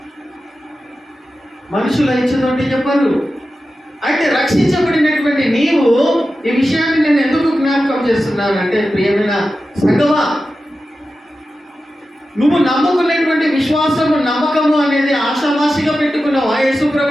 మనుషులు ఇచ్చిందంటే చెప్పరు. అయితే రక్షించబడినటువంటి నీవు ఈ విషయాన్ని నేను ఎందుకు జ్ఞాపకం చేస్తున్నానంటే, ప్రియమైన సంగమా, నువ్వు నమ్ముకునేటువంటి విశ్వాసము, నమ్మకము అనేది ఆశామాసిగా పెట్టుకున్నావా యేసు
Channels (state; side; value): normal; both; correlation 0.92